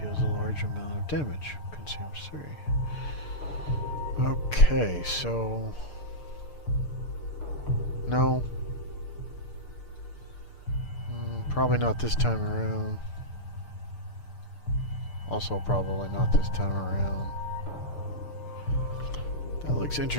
a large amount of damage. Consumes 3. Okay, so... No. Probably not this time around. Also probably not this time around. That looks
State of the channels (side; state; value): right; late; 6.7 ms